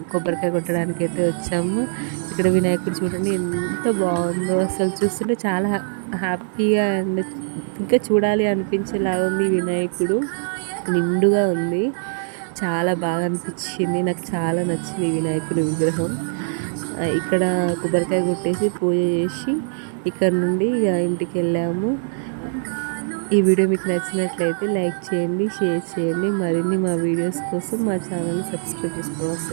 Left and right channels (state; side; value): silent; left; digital silence